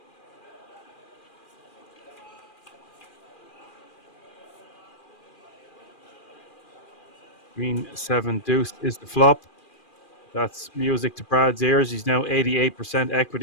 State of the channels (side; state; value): right; late; 2.4 ms